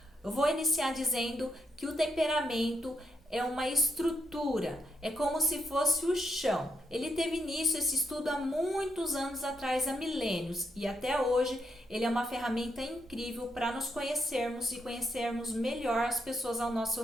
Eu vou iniciar dizendo que o temperamento é uma estrutura, é como se fosse o chão. Ele teve início esse estudo há muitos anos atrás, há milênios, e até hoje ele é uma ferramenta incrível para nos conhecermos e conhecermos melhor as pessoas ao nosso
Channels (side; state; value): both; normal; correlation 0.76